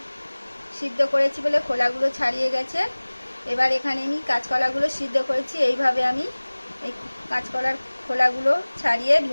সিদ্ধ করেছি বলে খোলাগুলো ছাড়িয়ে গেছে। এবার এখানে আমি কাঁচকলাগুলো সিদ্ধ করেছি। এইভাবে আমি এই কাঁচকলার খোলাগুলো ছাড়িয়ে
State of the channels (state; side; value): inverted; both; correlation -1.00